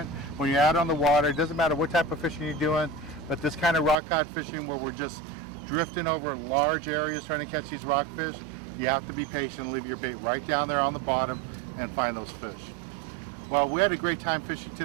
when you're out on the water. It doesn't matter what type of fishing you're doing, but this kind of rock cod fishing where we're just drifting over large areas trying to catch these rockfish, you have to be patient and leave your bait right down there on the bottom and find those fish. Well, we had a great time fishing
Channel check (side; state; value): left; drops out; at 4.0 s